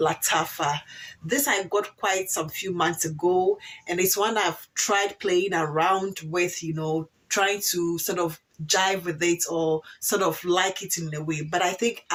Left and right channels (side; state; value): both; identical; correlation 1.00